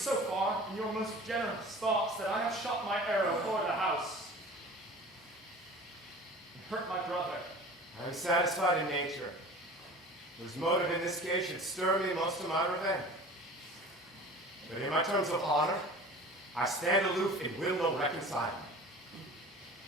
far in your most generous thoughts that I have shot my arrow toward the house and hurt my brother. I am satisfied in nature, whose motive in this case should stir me most to my revenge. But in my terms of honor, I stand aloof and will no reconciling.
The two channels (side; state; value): both; normal; correlation 0.41